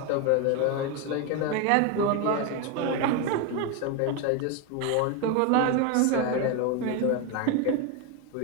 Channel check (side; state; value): both; different; correlation 0.02